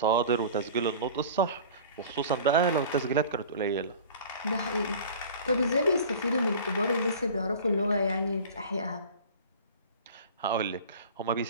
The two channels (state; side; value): inverted; both; correlation -0.41